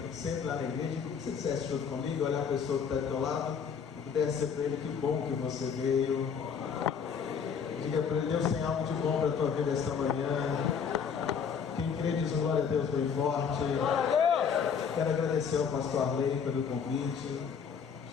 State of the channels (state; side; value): quieter; right; 6.7 dB